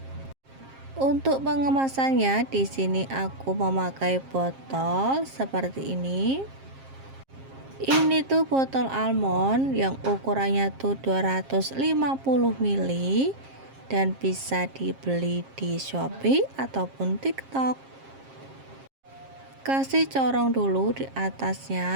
Untuk pengemasannya di sini aku memakai botol seperti ini. Ini tuh botol almond yang ukurannya tuh 250 ml dan bisa dibeli di Shopee ataupun TikTok. Kasih corong dulu di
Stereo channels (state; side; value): late; left; 7.5 ms